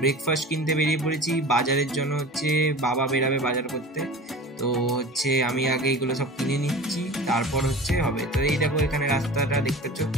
কিনতে বেরিয়ে পড়েছি। বাজারের জন্য হচ্ছে বাবা বেরাবে বাজার করতে। তো হচ্ছে আমি আগে এগুলো সব কিনে নিচ্ছি, তারপর হচ্ছে হবে। তো এই দেখো এখানে রাস্তাটা দেখতে পাচ্ছ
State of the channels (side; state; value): both; normal; correlation 0.37